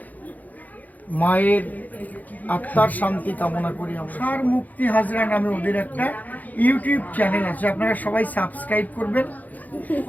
মায়ের আত্মার শান্তি কামনা করি। তুষার মুক্তি হাজরা নামে ওদের একটা ইউটিউব চ্যানেল আছে, আপনারা সবাই সাবস্ক্রাইব করবেন।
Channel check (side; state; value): right; late; 0.080 ms